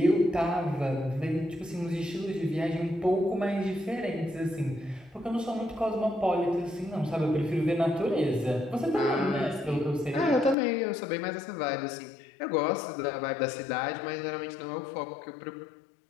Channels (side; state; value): right; drops out; at 10.6 s